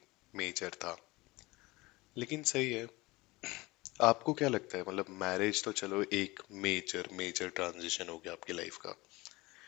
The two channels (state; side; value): quieter; right; 21.6 dB